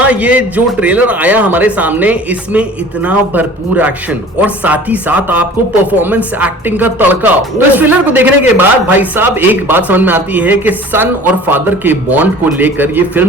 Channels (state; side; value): normal; both; correlation 0.45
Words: ये जो ट्रेलर आया हमारे सामने, इसमें इतना भरपूर एक्शन और साथ ही साथ आपको परफॉर्मेंस एक्टिंग का तड़का। तो इस ट्रेलर को देखने के बाद भाई साहब एक बात समझ में आती है कि सन और फादर के बॉन्ड को लेकर ये